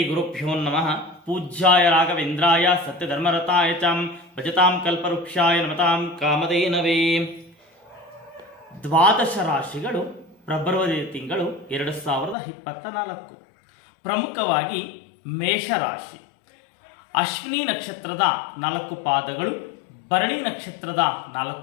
ಗುರುಭ್ಯೋ ನಮಃ. ಪೂಜ್ಯಾಯ ರಾಘವೇಂದ್ರಾಯ ಸತ್ಯಧರ್ಮರತಾಯ ಚ ಭಜತಾಂ ಕಲ್ಪವೃಕ್ಷಾಯ ನಮತಾಂ ಕಾಮಧೇನವೇ. ದ್ವಾದಶ ರಾಶಿಗಳು ಫೆಬ್ರವರಿ ತಿಂಗಳು 2024. ಪ್ರಮುಖವಾಗಿ ಮೇಷರಾಶಿ. ಅಶ್ವಿನಿ ನಕ್ಷತ್ರದ 4 ಪಾದಗಳು, ಭರಣಿ ನಕ್ಷತ್ರದ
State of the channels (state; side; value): drops out; right; at 12.4 s